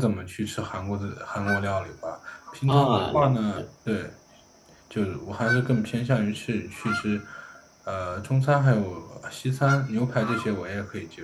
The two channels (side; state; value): both; identical; correlation 1.00